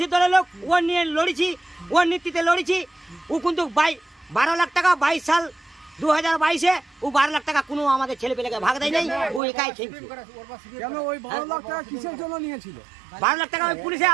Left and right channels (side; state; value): left; drops out; at 9.4 s